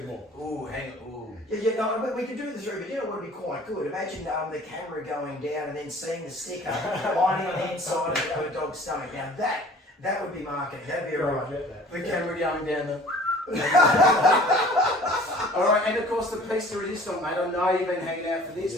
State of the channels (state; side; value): normal; both; correlation 0.48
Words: more. Ooh, hang on. Ooh. Yeah, no, but we can do the three, but you know what would be quite good? Imagine the camera going down and then seeing the sticker lining on the inside of a dog's stomach. Now that would be marketing. That'd be alright. The camera going down the. Alright, and of course the piece de resistance, mate. I know you've been hanging out for